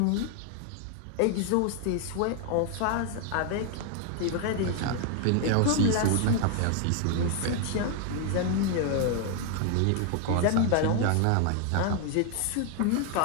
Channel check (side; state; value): both; different; correlation 0.00